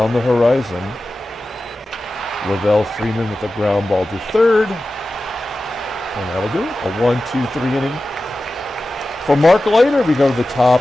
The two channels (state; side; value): normal; both; correlation 0.94